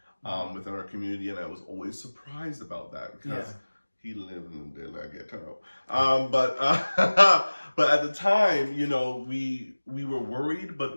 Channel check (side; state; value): both; inverted; correlation -1.00